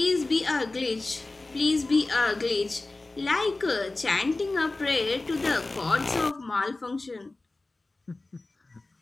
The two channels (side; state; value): right; quieter; 3.1 dB